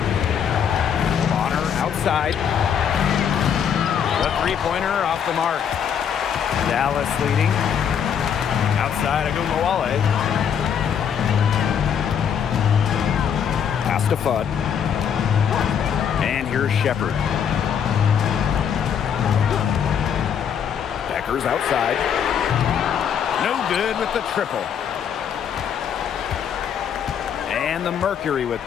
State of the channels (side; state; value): right; quieter; 8.0 dB